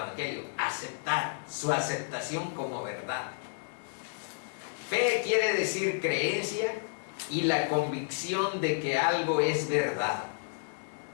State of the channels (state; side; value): silent; right; digital silence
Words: aceptar, su aceptación como verdad. Fe quiere decir creencia y la convicción de que algo es verdad.